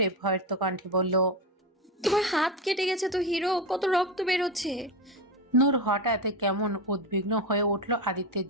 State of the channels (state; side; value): normal; both; correlation 0.16